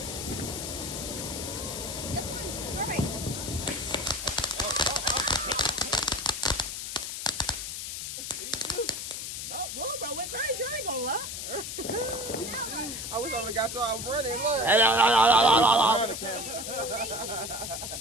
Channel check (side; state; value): left; noise; hiss, 6 dB below the sound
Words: Bro, went crazy. I ain't gonna lie. I wish I would have got y'all running. Look.